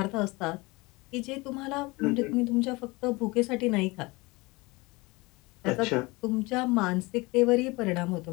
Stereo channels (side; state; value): right; quieter; 24.0 dB